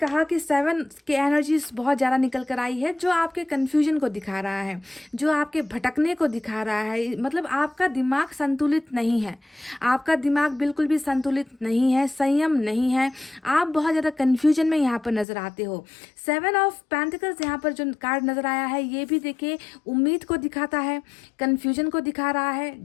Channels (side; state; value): right; drops out; at 15.2 s